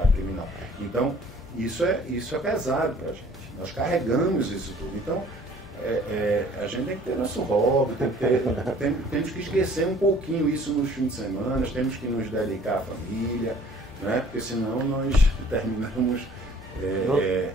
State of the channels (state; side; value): normal; both; correlation 0.54